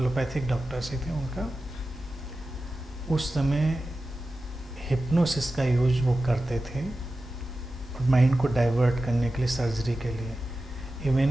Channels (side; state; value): both; normal; correlation 0.93